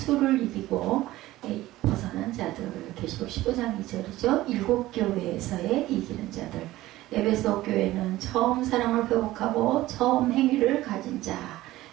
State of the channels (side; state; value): left; quieter; 16.6 dB